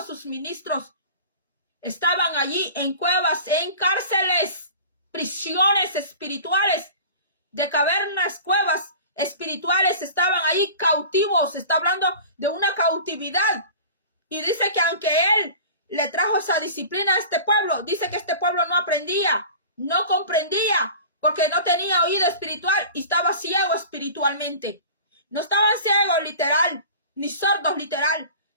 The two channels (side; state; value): both; inverted; correlation -0.39